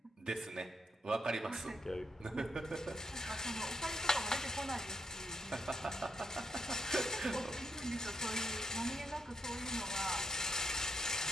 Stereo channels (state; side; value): normal; both; correlation 0.77